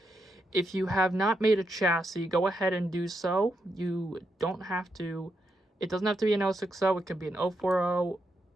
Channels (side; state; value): both; normal; correlation 0.83